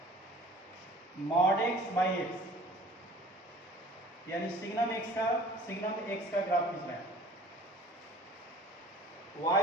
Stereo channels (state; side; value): normal; both; correlation 0.47